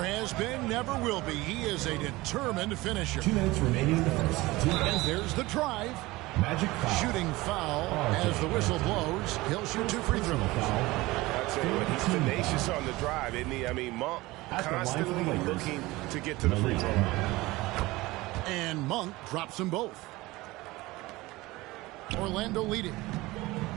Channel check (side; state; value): left; quieter; 20.2 dB